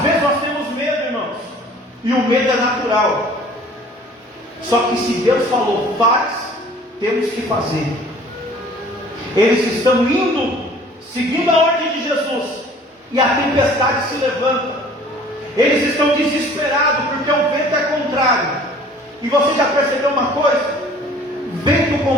vezes nós temos medo, irmãos, e o medo é natural. Só que se Deus falou faz, temos que fazer. Eles estão indo seguindo a ordem de Jesus, e a tempestade se levanta. Eles estão desesperados porque o vento é contrário. E você já percebeu uma coisa? Vento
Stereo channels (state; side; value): normal; both; correlation 0.51